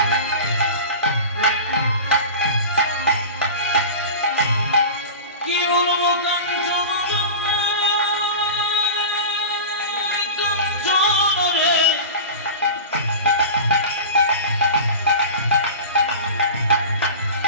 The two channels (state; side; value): inverted; both; correlation -0.31